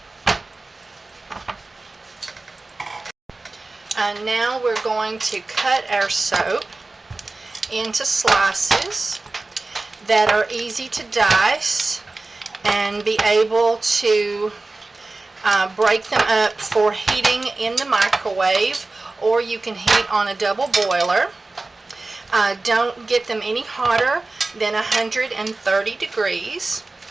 Now we're going to cut our soap into slices that are easy to dice and be able to break them up for heating in the microwave, or you can heat on a double boiler. Don't get them any hotter than 130 degrees.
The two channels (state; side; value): quieter; left; 3.3 dB